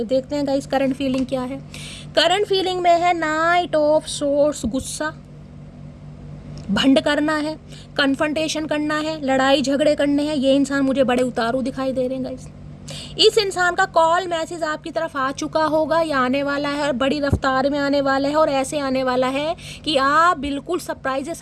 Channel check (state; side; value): identical; both; correlation 1.00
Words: देखते हैं गाइस करंट फीलिंग क्या है। करंट फीलिंग में है नाइट ऑफ सोर्स, गुस्सा, भंड करना है, कन्फ्रंटेशन करना है, लड़ाई झगड़े करने हैं। ये इंसान मुझे बड़े उतारू दिखाई दे रहे हैं गाइस। इस इंसान का कॉल मैसेज आपकी तरफ आ चुका होगा या आने वाला है, और बड़ी रफ्तार में आने वाला है, और ऐसे आने वाला है कि आप बिल्कुल सरप्राइज है।